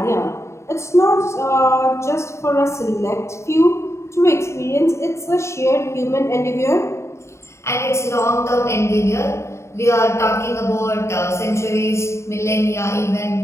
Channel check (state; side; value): late; right; 0.14 ms